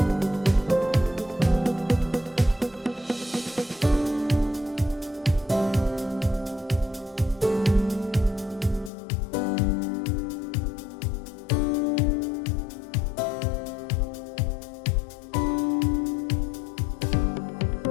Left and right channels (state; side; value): drops out; right; at 8.9 s